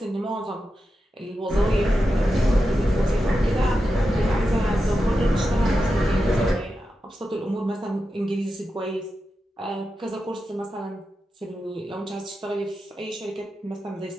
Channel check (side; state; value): both; normal; correlation 0.90